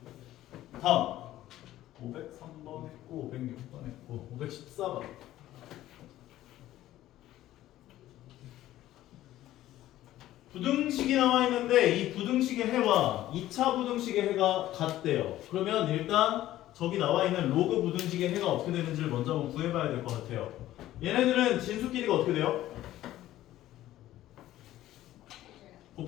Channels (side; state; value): right; quieter; 14.3 dB